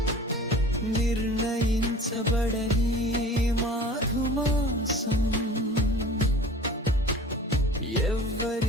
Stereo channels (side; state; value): both; normal; correlation 0.42